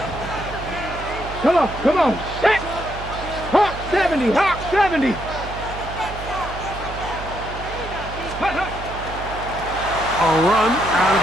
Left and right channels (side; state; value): right; noise; hum, 10 dB below the sound